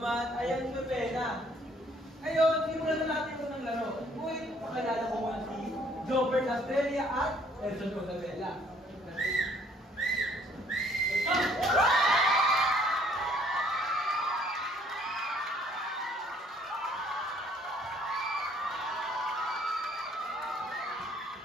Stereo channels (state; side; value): normal; both; correlation 0.62